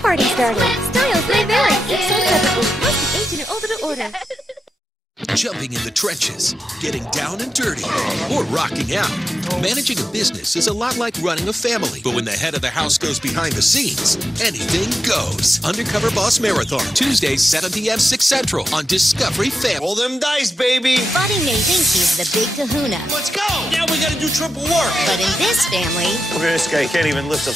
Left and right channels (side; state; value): both; normal; correlation 0.89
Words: started. Styles may vary. Each sold separately. Must be 18 or older to order. Jumping in the trenches, getting down and dirty, or rocking out. Managing a business is a lot like running a family, but when the head of the house goes behind the scenes, anything goes. Undercover Boss Marathon, Tuesdays, 7 p.m., 6 Central on Discovery Family. Roll them dice, baby. Buddy may think he's the big kahuna. Let's go. Now we gotta do triple work. But in this family, Look at this guy, he can't even lift a